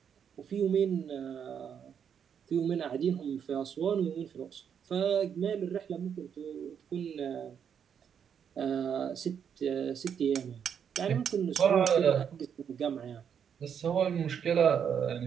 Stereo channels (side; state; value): left; quieter; 7.9 dB